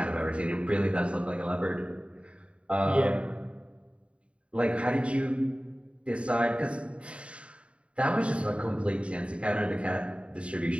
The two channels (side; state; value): left; late; 0.060 ms